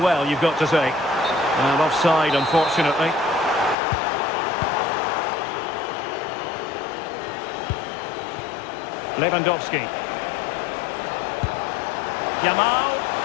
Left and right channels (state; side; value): drops out; right; at 3.8 s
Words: you've got to say. And offside, unfortunately. Lewandowski. Yamal.